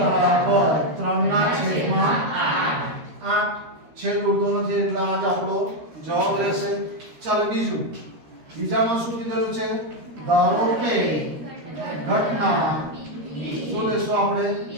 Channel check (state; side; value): late; left; 13 ms